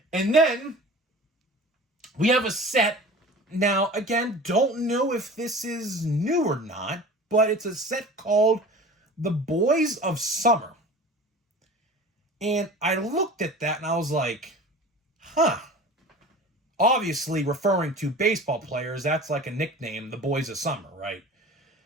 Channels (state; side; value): normal; both; correlation 0.39